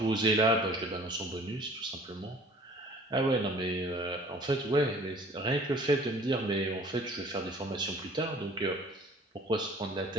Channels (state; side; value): normal; both; correlation 0.50